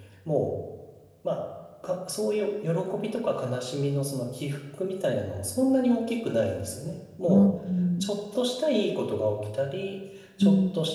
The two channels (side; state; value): both; identical; correlation 1.00